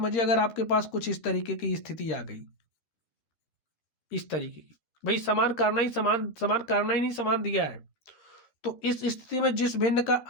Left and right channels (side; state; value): right; late; 13 ms